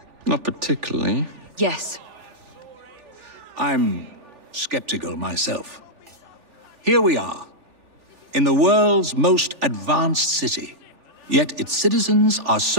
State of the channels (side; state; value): left; late; 3.4 ms